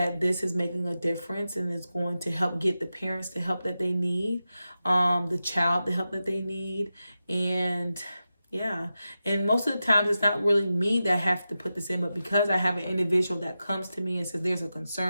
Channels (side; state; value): both; inverted; correlation -0.92